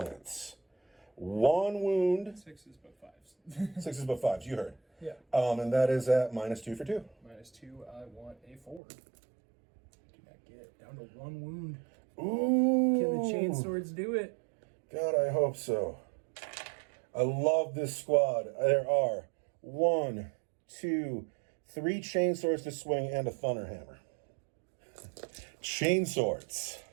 1 wound. 6s but 5s. 6s but 5s, you heard. Yeah. And that is at -2 for 2. -2, I want a 4. Do not get down to 1 wound. Ooh. Can the chainswords do it? God, I hope so. I love this squad. There are 1, 2, 3 chainswords to swing and a thunderhammer. Chainswords.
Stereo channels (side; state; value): left; drops out; at 8.8 s